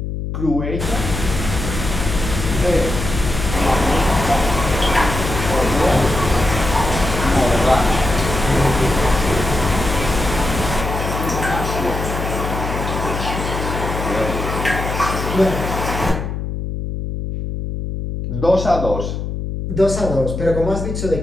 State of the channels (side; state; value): left; noise; hum, 4 dB below the sound